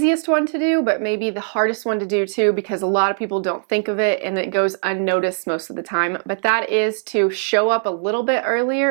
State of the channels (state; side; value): silent; left; digital silence